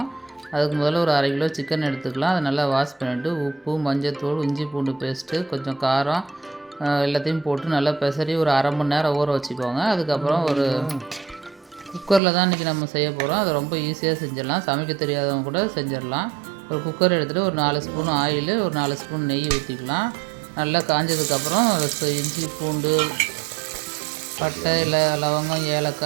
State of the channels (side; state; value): left; drops out; at 12.2 s